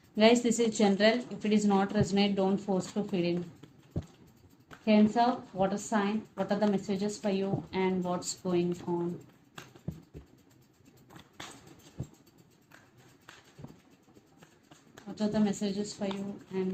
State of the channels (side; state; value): both; identical; correlation 1.00